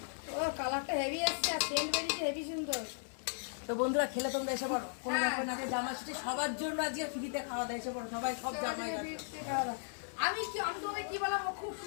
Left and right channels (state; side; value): silent; right; 53 dB below the other